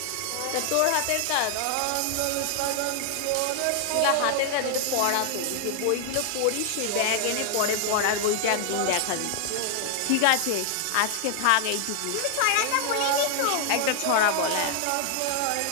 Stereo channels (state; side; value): different; both; correlation 0.00